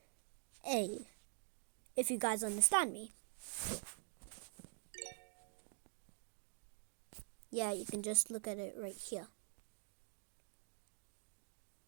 a, if you guys understand me. Yeah, you can just look at it right here.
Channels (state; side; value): silent; left; digital silence